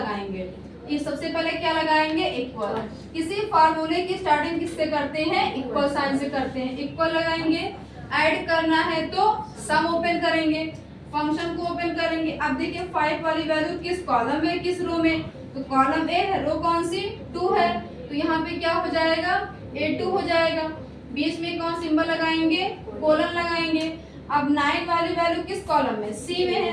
ये सबसे पहले क्या लगाएंगे, इक्वल. किसी फार्मूले की स्टार्टिंग किससे करते हैं, इक्वल साइन से करते हैं. इक्वल लगाएंगे, ऐड करना है तो सम ओपन करेंगे, फंक्शन को ओपन करेंगे. अब देखिए 5 वाली वैल्यू किस कॉलम में किस रो में, तो कॉलम ए है, रो कौन सी 2 है, तो यहाँ पे क्या हो जाएगा A2 हो जाएगा. बीच में कौन सिंबल लगाएंगे, कोलन लगाएंगे. अब 9 वाली वैल्यू किस कॉलम में, सी में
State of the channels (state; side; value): identical; both; correlation 1.00